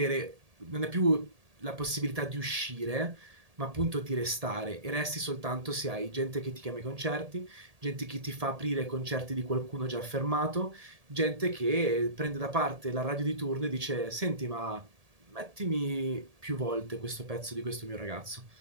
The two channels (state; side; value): late; left; 1.8 ms